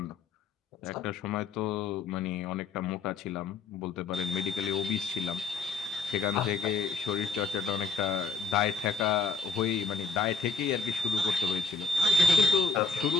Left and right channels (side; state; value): right; quieter; 4.7 dB